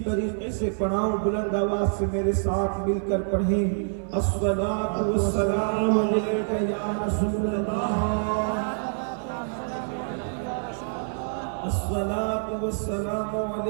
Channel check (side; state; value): left; silent; digital silence